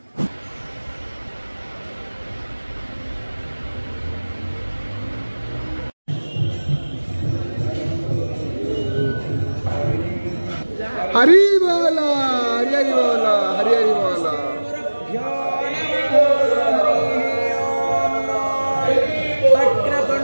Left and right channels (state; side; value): inverted; both; correlation -1.00